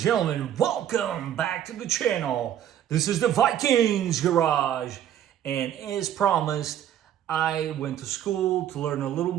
welcome back to the channel. This is the Vikings Garage. And as promised, I went to school to learn a little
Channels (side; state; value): left; quieter; 10.6 dB